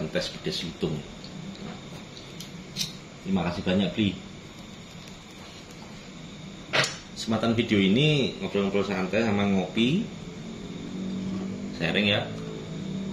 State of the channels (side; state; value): both; identical; correlation 1.00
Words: tes pedes lutung. Nah, terima kasih banyak Bli. Kesempatan video ini ngobrol-ngobrol santai sama ngopi, sharing ya.